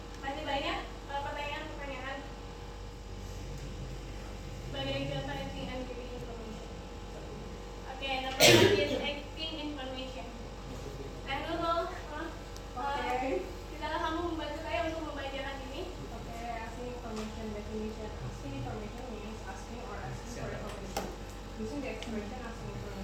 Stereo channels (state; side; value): identical; both; correlation 1.00